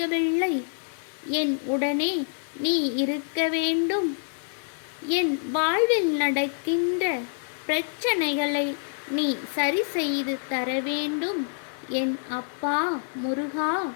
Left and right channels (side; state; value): right; silent; 60 dB below the other